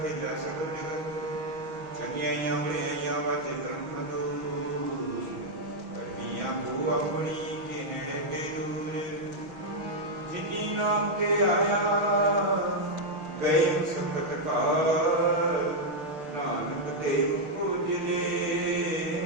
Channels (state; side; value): late; left; 6.3 ms